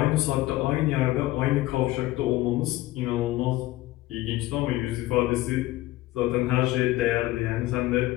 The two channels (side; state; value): right; quieter; 17.1 dB